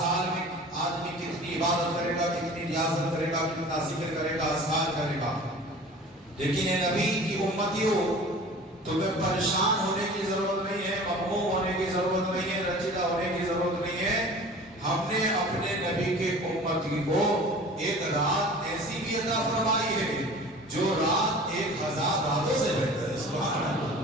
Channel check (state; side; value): normal; both; correlation 0.42